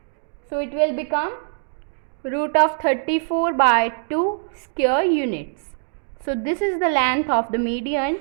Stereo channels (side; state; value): left; silent; digital silence